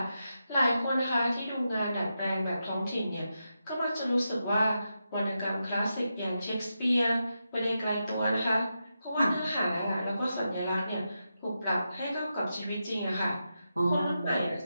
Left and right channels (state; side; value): inverted; both; correlation -0.87